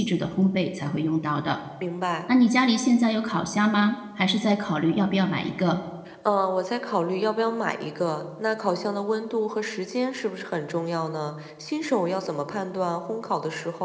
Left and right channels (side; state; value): both; identical; correlation 1.00